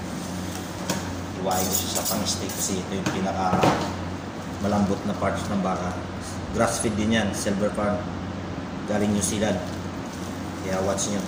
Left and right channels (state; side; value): identical; both; correlation 1.00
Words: Iwain ko siya sa pang steak kasi ito yung pinaka malambot na parts ng baka. Grass feed din yan, Silver Farm. Galing New Zealand. Kaya watch nyo.